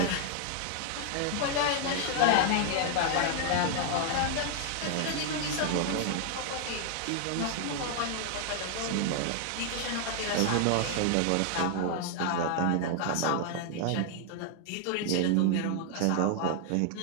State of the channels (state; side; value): different; both; correlation 0.00